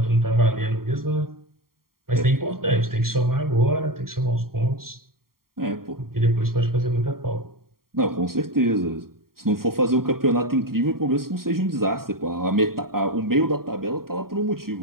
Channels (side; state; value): left; late; 0.93 ms